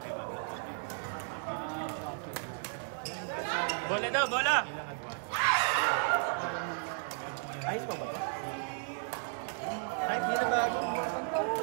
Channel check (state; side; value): silent; left; 55 dB below the other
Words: Bola daw, bola! Kahit hindi na bago.